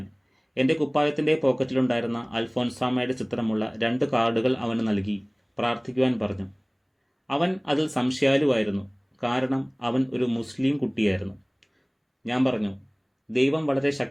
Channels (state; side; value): identical; both; correlation 1.00